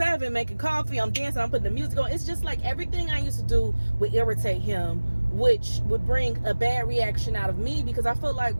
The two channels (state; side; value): inverted; both; correlation -1.00